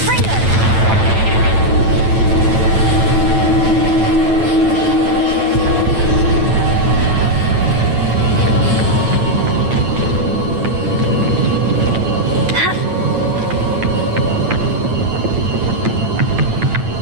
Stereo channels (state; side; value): late; left; 9.1 ms